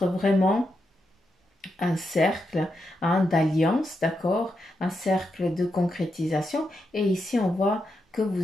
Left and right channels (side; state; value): both; normal; correlation 0.84